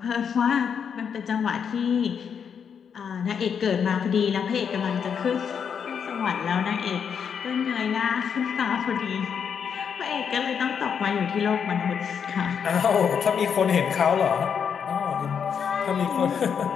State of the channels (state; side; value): quieter; right; 7.2 dB